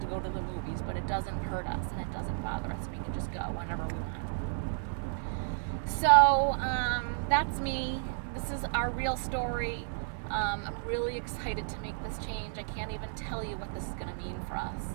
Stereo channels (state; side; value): silent; left; 56 dB below the other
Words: go to the movies, but it doesn't hurt us and it doesn't bother us. We can just go whenever we want. So that's me. This is our real story. I'm really excited to make this change. I can't even tell you what this is going to mean for us.